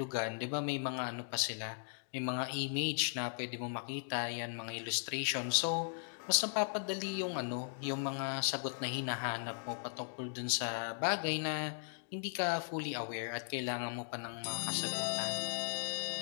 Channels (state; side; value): silent; right; digital silence